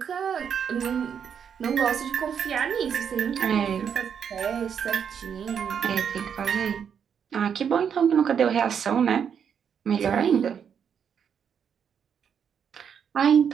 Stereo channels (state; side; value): quieter; left; 7.6 dB